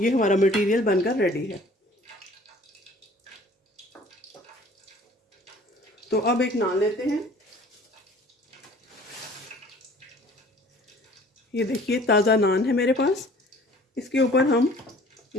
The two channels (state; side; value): normal; both; correlation 0.51